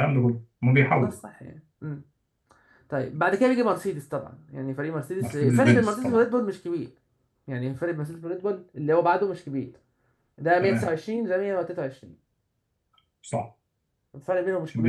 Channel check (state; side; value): identical; both; correlation 1.00